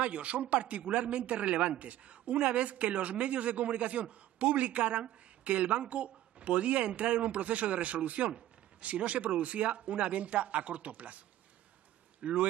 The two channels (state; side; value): quieter; left; 13.6 dB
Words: son particularmente relevantes, una vez que los medios de comunicación publicaran que el banco podía entrar en un proceso de resolución si no se producía una venta a corto plazo.